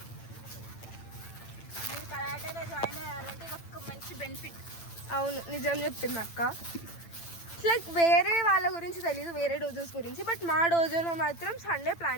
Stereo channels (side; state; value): right; late; 8.9 ms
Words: మీరు కరాటేలో జాయిన్ అయ్యాలంటే ఒక మంచి బెనిఫిట్. అవును, నిజం చెప్పింది అక్క. లైక్ వేరే వాళ్ళ గురించి తెలీదు, వేరే డోజోస్ గురించి. బట్ మా డోజోలో మాత్రం సండే